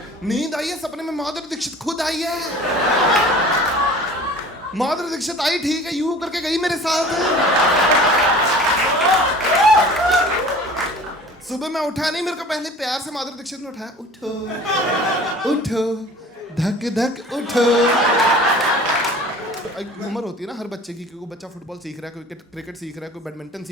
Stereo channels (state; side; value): normal; both; correlation 0.44